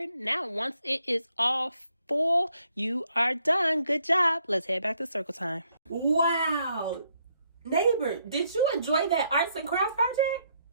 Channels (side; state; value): both; inverted; correlation -0.73